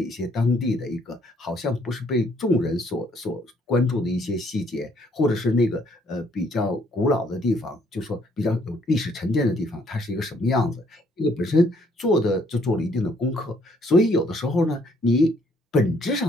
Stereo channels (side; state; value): both; normal; correlation 0.66